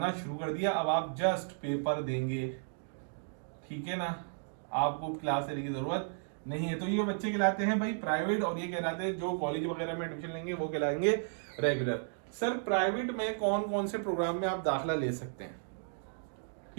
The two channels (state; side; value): silent; left; digital silence